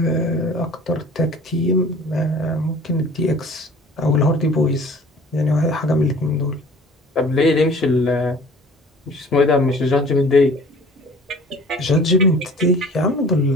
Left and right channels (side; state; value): both; normal; correlation 0.47